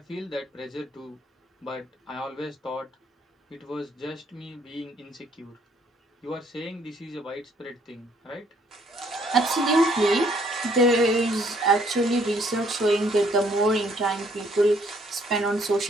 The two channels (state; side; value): normal; both; correlation 0.65